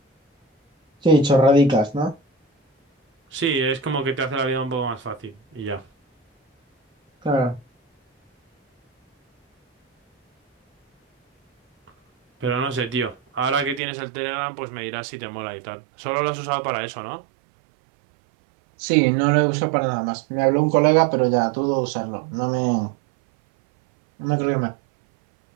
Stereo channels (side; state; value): left; drops out; at 13.8 s